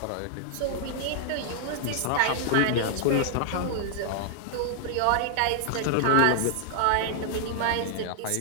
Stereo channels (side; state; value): both; different; correlation -0.01